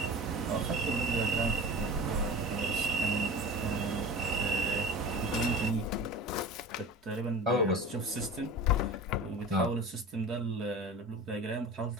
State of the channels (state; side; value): normal; both; correlation 0.34